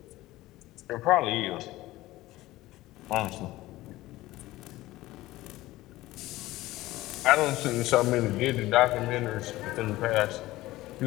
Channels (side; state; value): right; quieter; 17.4 dB